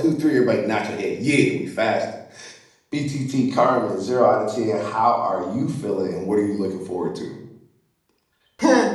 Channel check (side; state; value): both; identical; correlation 1.00